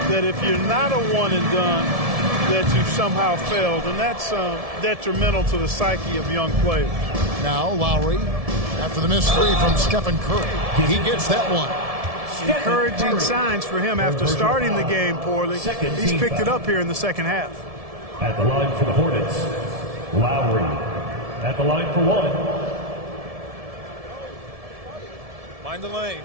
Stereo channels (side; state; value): left; late; 1.7 ms